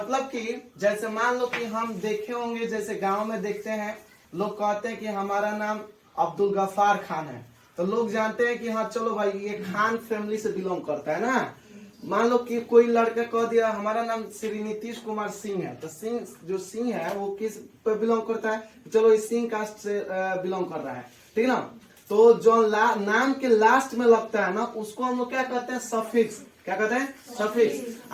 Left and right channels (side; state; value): both; identical; correlation 1.00